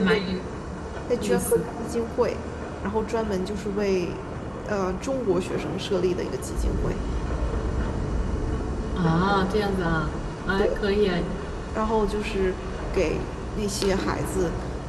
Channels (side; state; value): both; identical; correlation 1.00